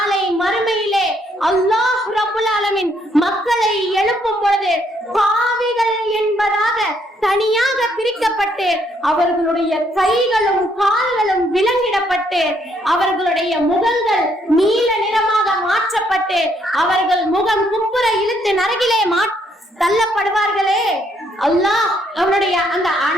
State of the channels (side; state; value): both; normal; correlation 0.71